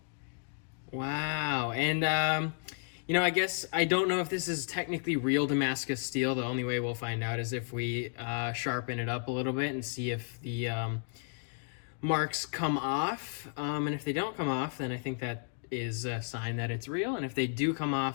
Wow. And you know, I guess I don't know if this is technically real Damascus steel. The only way we'll find out is if we sharpen it up a little bit and see if the marks come off. And if they don't come off, then I think that is a sign that it's real. And if they do come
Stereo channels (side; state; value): right; silent; digital silence